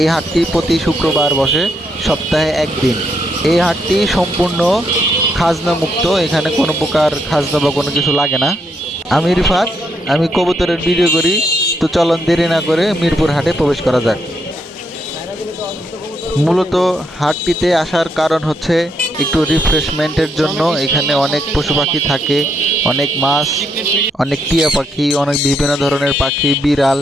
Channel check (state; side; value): normal; both; correlation 0.77